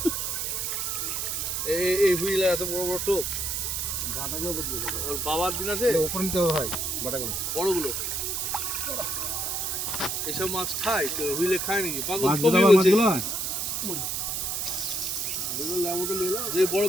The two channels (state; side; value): noise; right; hiss, 1 dB below the sound